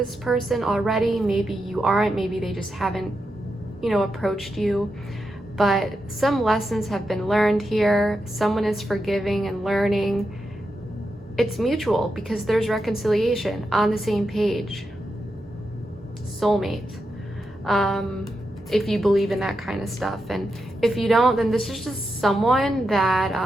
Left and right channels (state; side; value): normal; both; correlation 0.87